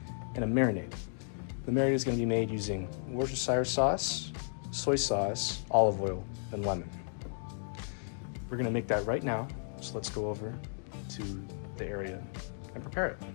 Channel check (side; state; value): right; silent; digital silence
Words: and a marinade. The marinade is going to be made using Worcestershire sauce, soy sauce, olive oil, and lemon. We're going to make that right now, so let's go over to the area and prepare it.